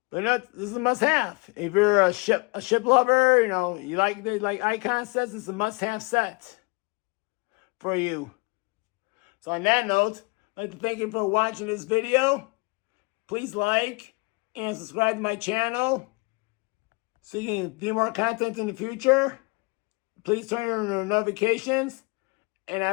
but you know, this is a must-have. If you're a ship lover, you know, you like icon sets, it's a must-have set for you. So on that note, I'd like to thank you for watching this video. Please like and subscribe to my channel so you can view more content in the future. Please turn on your notifications and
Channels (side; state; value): right; quieter; 30.2 dB